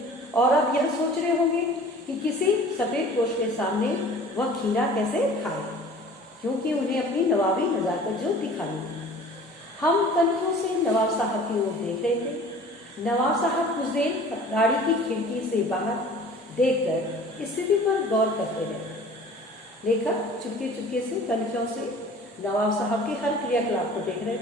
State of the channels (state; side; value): normal; both; correlation 0.46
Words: और अब यह सोच रहे होंगे कि किसी सफ़ेद पोश के सामने वह खीरा कैसे खाए, क्योंकि उन्हें अपनी नवाबी नज़ाकत जो दिखानी है। हम कन्खों से नवाब साहब की ओर देख रहे थे। नवाब साहब कुछ देर गाड़ी की खिड़की से बाहर देखकर स्थिति पर गौर करते रहे। लेखक चुपके चुपके से कन्खों से नवाब साहब के हर क्रियाकलाप को देख रहे